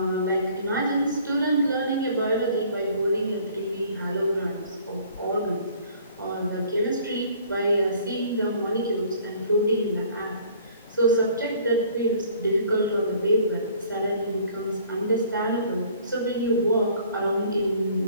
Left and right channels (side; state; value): both; inverted; correlation -0.54